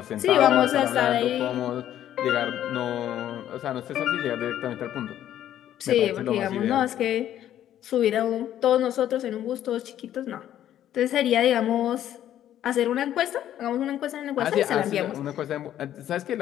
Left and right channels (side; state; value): right; quieter; 11.5 dB